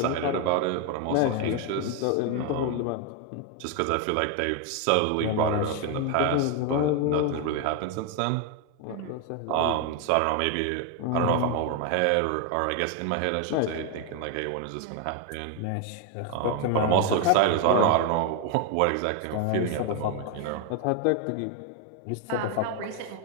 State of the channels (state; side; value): different; both; correlation 0.01